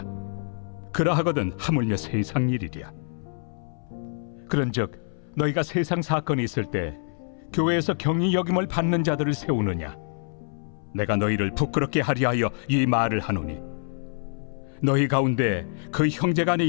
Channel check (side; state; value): right; silent; 61 dB below the other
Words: 그러하거든 하물며 세상 일이랴. 그런즉 너희가 세상 사건이 있을 때 교회에서 경히 여김을 받는 자들을 세우느냐? 내가 너희를 부끄럽게 하려 하여 이 말을 하노니 너희 가운데 그 형제간의